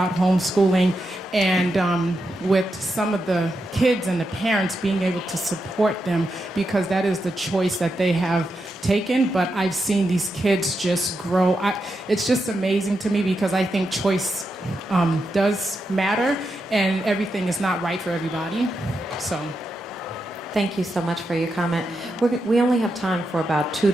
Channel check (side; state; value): both; normal; correlation 0.86